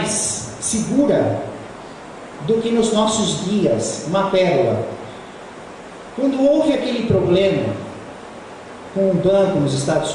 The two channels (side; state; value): both; identical; correlation 1.00